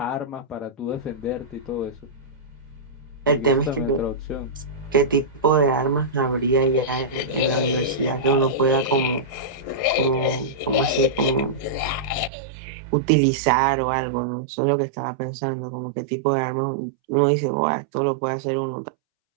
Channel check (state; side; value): drops out; left; at 12.3 s